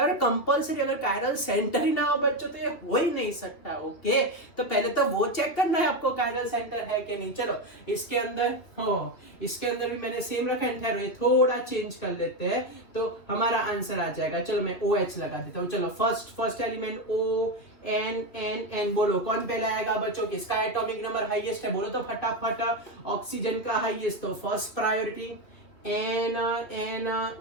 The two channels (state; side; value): late; right; 2.9 ms